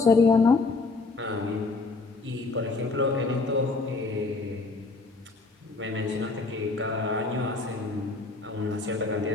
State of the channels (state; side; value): quieter; right; 3.7 dB